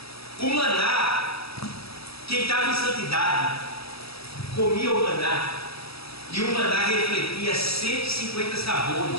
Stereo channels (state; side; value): late; right; 0.77 ms